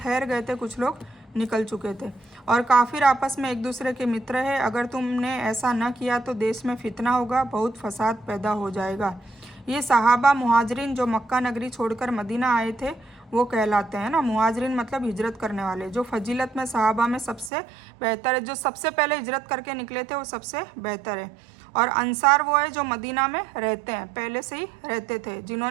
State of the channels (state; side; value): drops out; left; at 17.5 s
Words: गए थे, कुछ लोग निकल चुके थे। और काफिर आपस में एक दूसरे के मित्र है, अगर तुमने ऐसा न किया तो देश में फितना होगा, बहुत फसाद पैदा हो जाएगा। ये सहाबा मुहाजिरिन जो मक्का नगरी छोड़कर मदीना आए थे वो कहलाते हैं ना। मुहाजिरिन मतलब हिजरत करने वाले, जो फजीलत में सहाबा में सबसे बेहतर है, जो सबसे पहले हिजरत करके निकले थे वो सबसे बेहतर है। और अंसार वो है जो मदीना में रहते हैं, पहले से ही रहते थे,